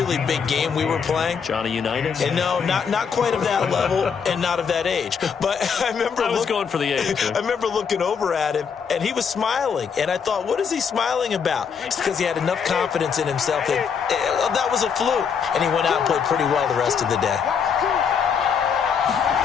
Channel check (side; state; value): right; quieter; 6.6 dB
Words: big game we were playing. Johnny Unitas? And no, not quite of that level and not of that age. But I was going for the age. I remember looking over at him, and he was smiling. And I thought, what is he smiling about? It's because he had enough confidence in himself that that was a fluke. And he went out and played pretty well the rest of the day.